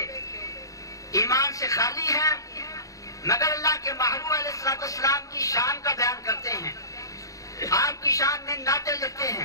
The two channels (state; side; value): late; right; 0.16 ms